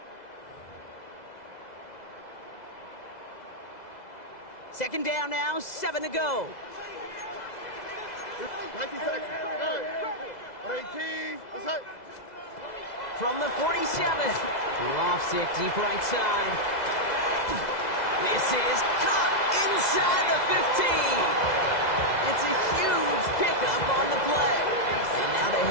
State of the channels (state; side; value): late; right; 2.0 ms